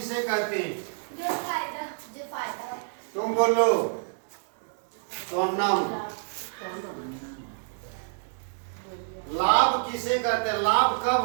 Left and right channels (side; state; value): left; silent; digital silence